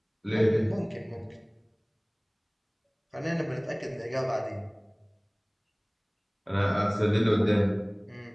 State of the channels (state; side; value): identical; both; correlation 1.00